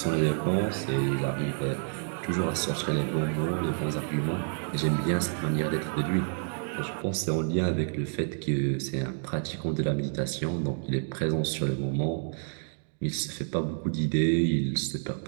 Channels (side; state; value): left; silent; 59 dB below the other